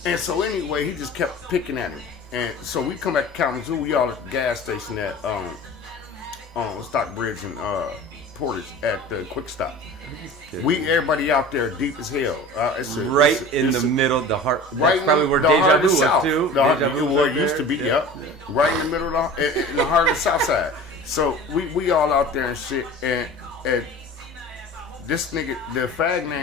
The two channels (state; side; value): normal; both; correlation 0.38